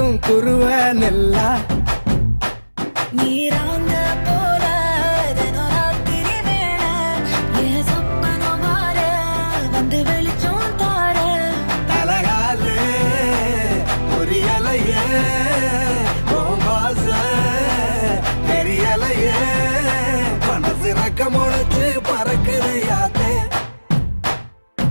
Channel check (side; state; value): both; inverted; correlation -1.00